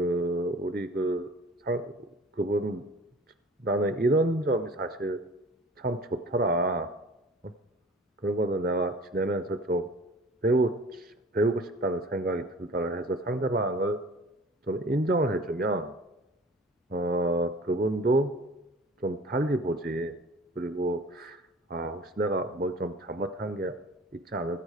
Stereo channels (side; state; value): both; normal; correlation 0.44